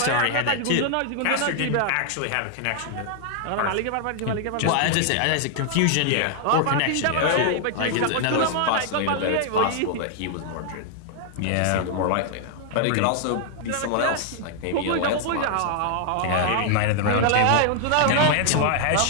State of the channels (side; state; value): both; different; correlation 0.00